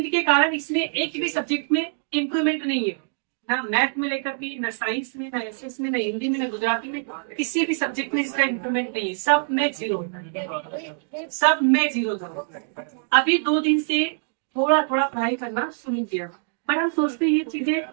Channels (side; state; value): left; silent; digital silence